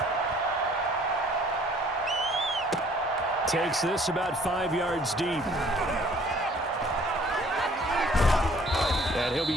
Takes this about 5 yards deep. And he'll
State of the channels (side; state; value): both; normal; correlation 0.56